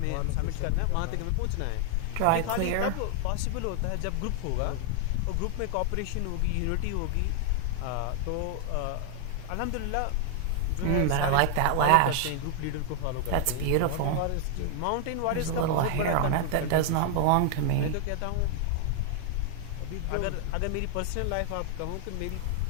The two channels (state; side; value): different; both; correlation 0.00